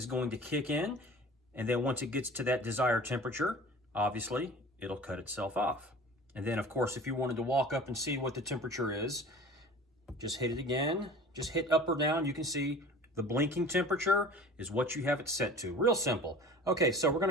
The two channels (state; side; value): normal; both; correlation 0.42